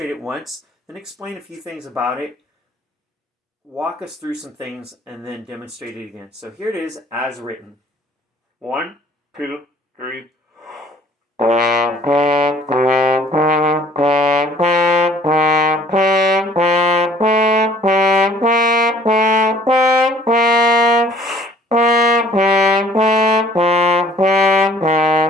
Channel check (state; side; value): normal; both; correlation 0.54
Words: it once, then explain a few things about it, walk us through some things, and then demonstrate it again. So here it is as written. 1, 2, 3.